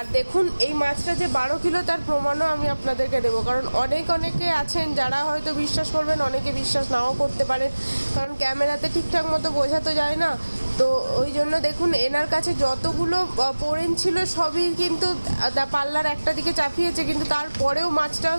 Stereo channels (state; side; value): inverted; both; correlation -1.00